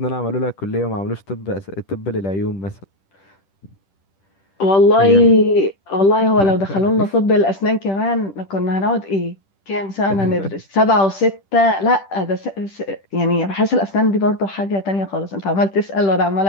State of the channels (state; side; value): late; right; 10 ms